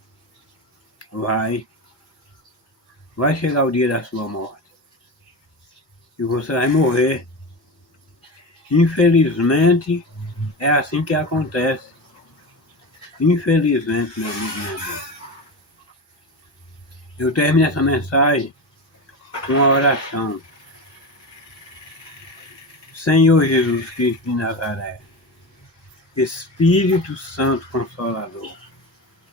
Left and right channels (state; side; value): late; right; 1.7 ms